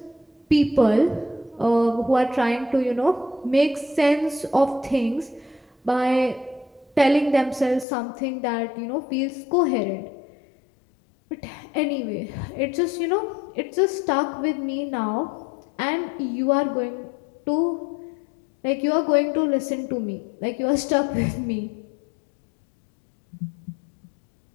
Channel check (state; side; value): drops out; right; at 7.9 s